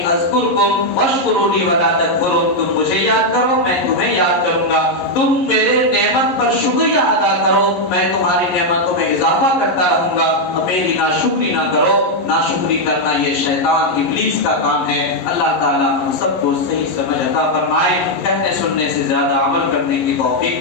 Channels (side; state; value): right; late; 11 ms